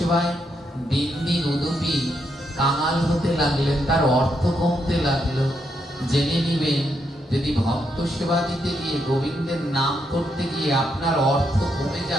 দিন দিন উদুপী কাঙাল হতে লাগলেন, তার অর্থ কমতে লাগলো। জেনে নিবেন, যদি ভক্ত সেবা দিতে গিয়ে, গোবিন্দের নাম করতে গিয়ে আপনার অর্থ কমে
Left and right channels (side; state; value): both; normal; correlation 0.79